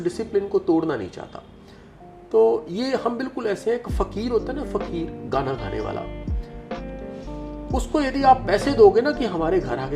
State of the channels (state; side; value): identical; both; correlation 1.00